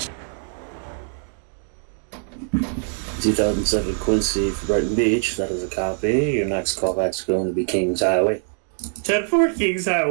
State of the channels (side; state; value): left; silent; 63 dB below the other